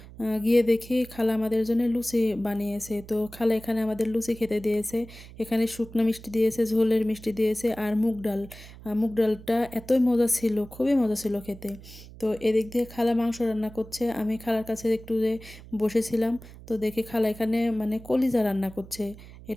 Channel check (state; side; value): noise; right; hum, 18 dB below the sound